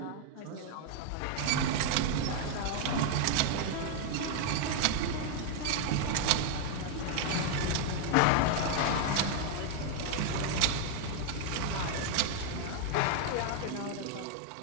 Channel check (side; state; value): both; different; correlation 0.00